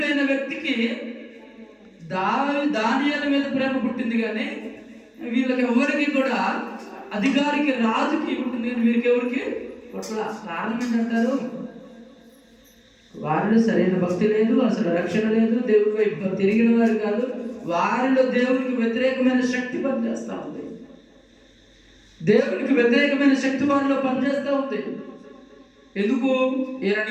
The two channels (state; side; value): identical; both; correlation 1.00